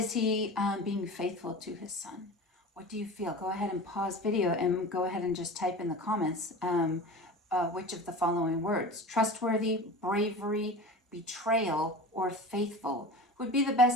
he being faithful to his son? What do you feel? Go ahead and pause video and go ahead and just type in the comments which of the following words, trustworthy, bravery, betrayal, or faithful, would be the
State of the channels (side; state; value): both; normal; correlation 0.34